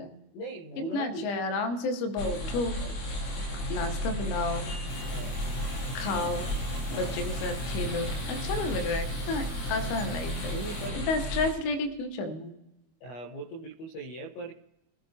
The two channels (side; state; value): right; late; 25 ms